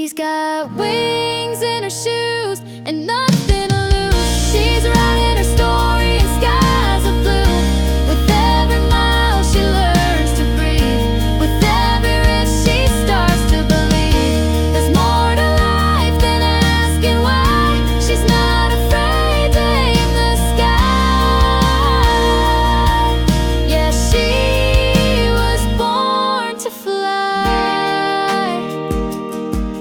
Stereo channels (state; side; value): identical; both; correlation 1.00